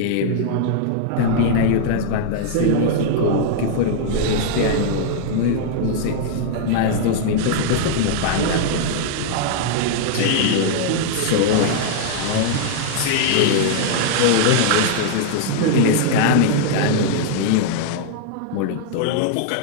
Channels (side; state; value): both; different; correlation -0.01